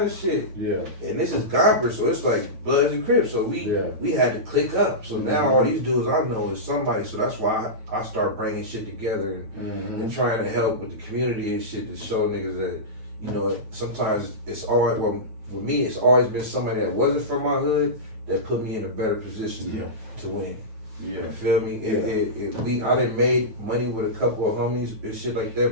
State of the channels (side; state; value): left; late; 9.1 ms